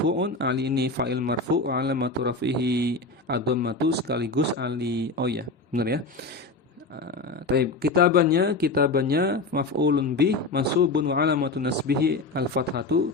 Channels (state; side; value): quieter; right; 3.4 dB